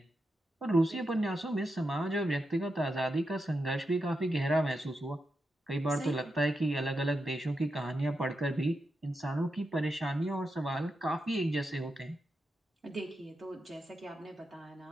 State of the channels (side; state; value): both; normal; correlation 0.87